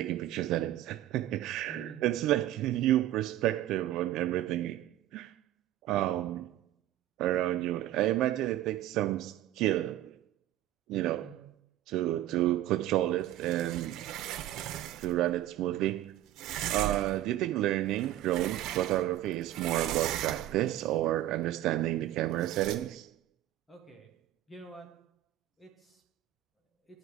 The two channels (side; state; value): left; quieter; 13.8 dB